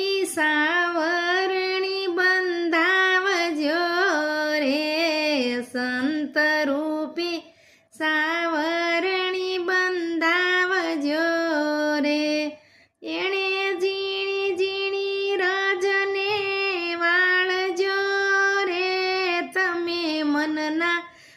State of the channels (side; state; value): both; identical; correlation 1.00